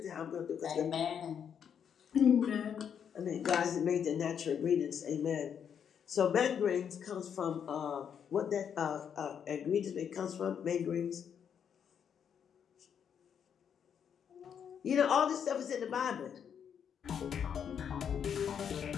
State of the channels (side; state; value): right; quieter; 8.0 dB